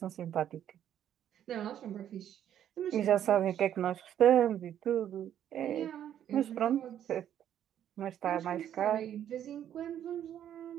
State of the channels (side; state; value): left; quieter; 10.3 dB